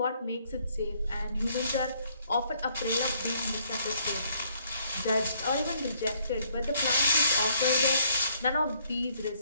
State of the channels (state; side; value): inverted; both; correlation -0.68